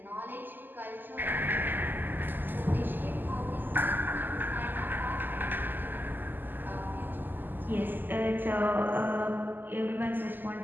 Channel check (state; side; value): late; left; 0.090 ms